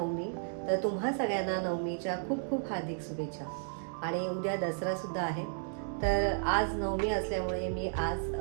तर तुम्हा सगळ्यांना नवमीच्या खूप खूप हार्दिक शुभेच्छा. आणि उद्या दसरा सुद्धा आहे. तर आज नवमी असल्यामुळे मी आज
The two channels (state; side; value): silent; left; digital silence